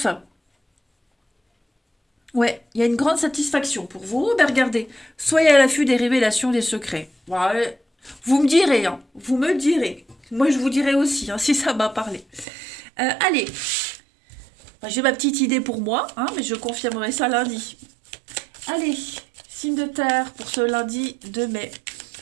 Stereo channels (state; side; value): drops out; left; at 12.5 s